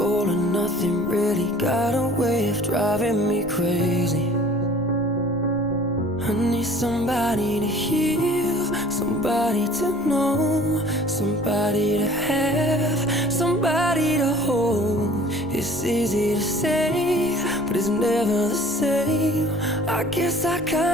or nothing really got a way of driving me crazy. I need somebody to heal, somebody to know, somebody to have, somebody to hold. It's easy to say, but it's never the same. I guess I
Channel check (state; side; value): noise; right; rumble, 20 dB below the sound